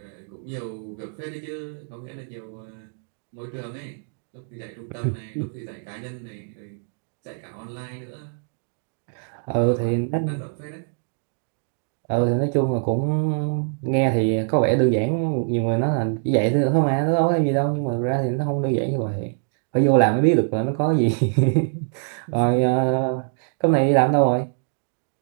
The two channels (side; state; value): left; silent; digital silence